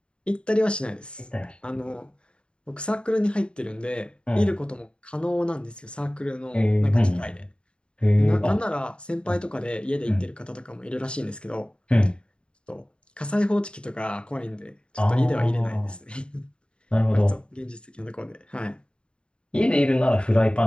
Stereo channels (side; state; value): right; late; 0.054 ms